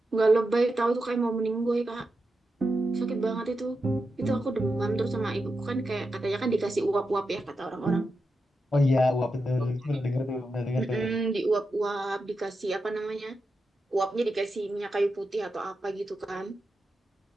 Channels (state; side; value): normal; both; correlation 0.88